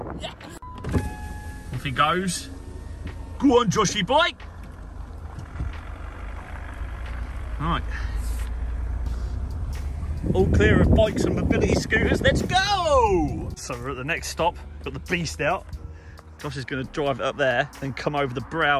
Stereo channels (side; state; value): both; identical; correlation 1.00